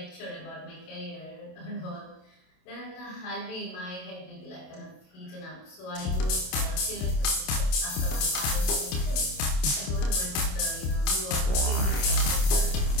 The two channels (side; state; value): right; late; 27 ms